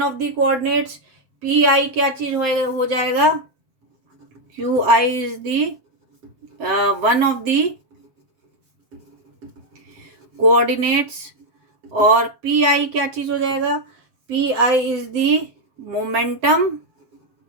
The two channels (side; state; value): left; late; 7.7 ms